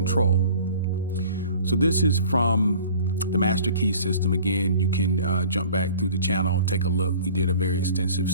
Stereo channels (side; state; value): both; inverted; correlation -0.47